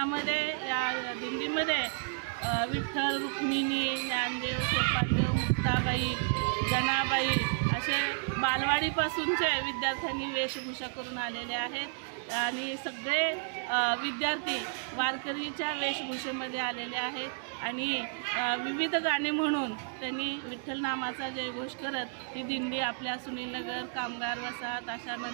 या दिंडीमध्ये विठ्ठल, रुक्मिणी, ज्ञानदेव, सोपानदेव, मुक्ताबाई, जनाबाई असे बालवाडीपासूनचे विद्यार्थ्यांनी वेशभूषा करून आलेले आहेत आणि सगळे विद्यार्थी वारकरीच्या वेशभूषेमध्ये आलेले आहेत आणि विविध गाणी म्हणून त्यांनी विठ्ठल नामाचा जयघोष करत ही दिंडी आपल्या सुनीलनगर, कामगार वसाहत,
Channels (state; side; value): silent; left; 57 dB below the other